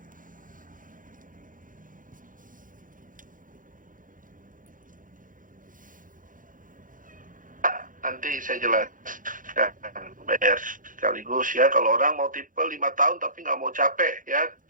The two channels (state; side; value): late; left; 0.39 ms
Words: Nanti saya jelaskan, bayar sekaligus ya. Kalau orang mau tipe 5 tahun tapi nggak mau capek ya,